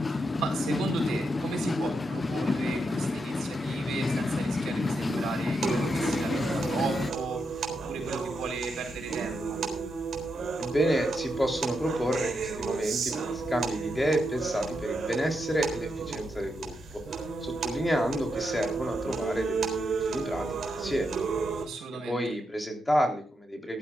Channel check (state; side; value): normal; both; correlation 0.83